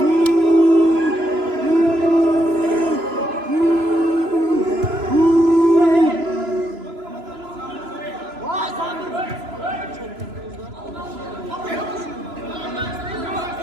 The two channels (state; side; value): late; left; 3.0 ms